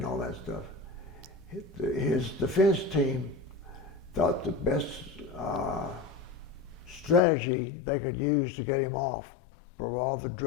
all that stuff. His defense team thought the best strategy they could use to get him off for all the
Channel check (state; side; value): drops out; right; at 7.2 s